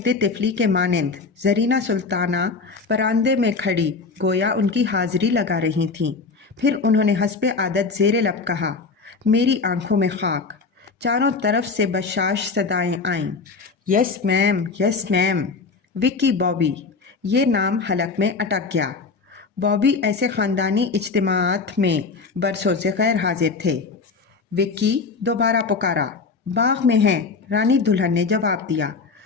तिफली के मानंद ज़रीना सुल्ताना बरामदे में खड़ी गोया उनकी हाज़िरी लगा रही थीं। फिर उन्होंने हस्बे आदत ज़ेरे लब कहा, मेरी आंखों में खाक। चारों तरफ से बशाश सदाएं आईं, yes ma'am, yes ma'am. Vicky Bobby, ये नाम हलक में अटक गया। बॉबी ऐसे ख़ानदानी इज्तिमाआत में बरसों से गैर हाजिर थे। विक्की दोबारा पुकारा, बाग में हैं, रानी दुल्हन ने जवाब दिया।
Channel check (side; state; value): right; quieter; 4.5 dB